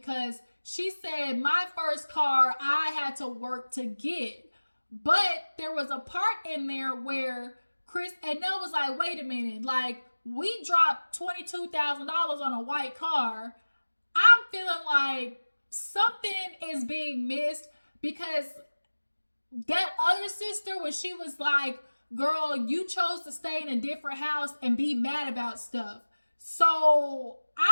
she said, my first car I had to work to get. But there was a part in there where Chris and Nell was like, wait a minute, like, we dropped $22,000 on a white car. I'm feeling like something is being missed, because that other sister, when she was like, girl, you chose to stay in a different house and be mad about stuff. So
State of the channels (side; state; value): both; inverted; correlation -1.00